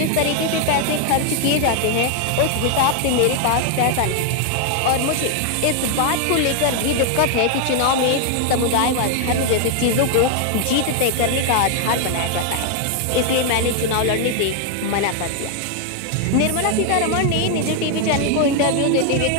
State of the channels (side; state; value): both; different; correlation 0.00